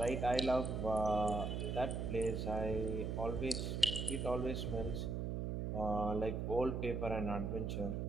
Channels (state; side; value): noise; right; hum, 2 dB below the sound